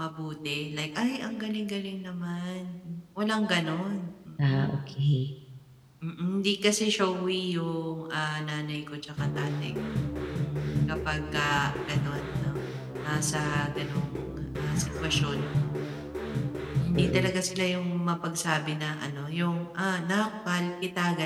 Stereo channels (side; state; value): both; identical; correlation 1.00